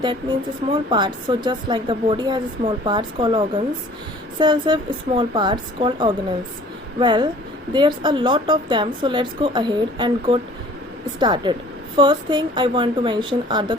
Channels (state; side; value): normal; both; correlation 0.50